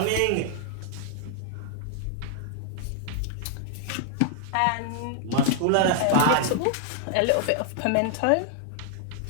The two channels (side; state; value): both; different; correlation -0.01